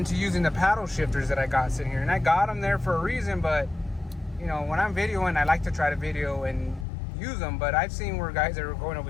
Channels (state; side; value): drops out; right; at 6.9 s